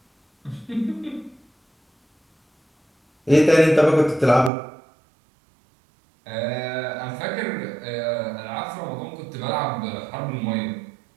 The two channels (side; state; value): left; drops out; at 4.5 s